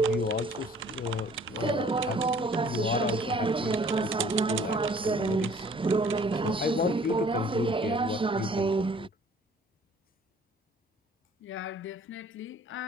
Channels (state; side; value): normal; both; correlation 0.55